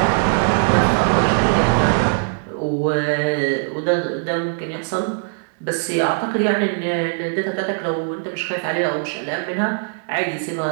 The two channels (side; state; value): left; silent; digital silence